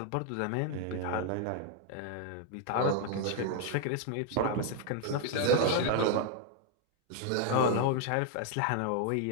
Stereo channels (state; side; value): different; both; correlation 0.00